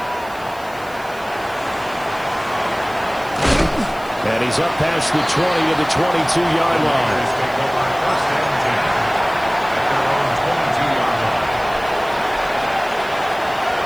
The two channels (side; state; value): right; noise; hiss, 22 dB below the sound